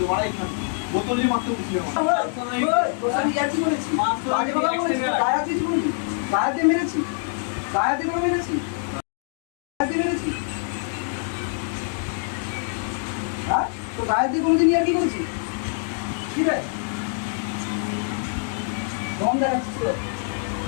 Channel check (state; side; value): silent; right; 62 dB below the other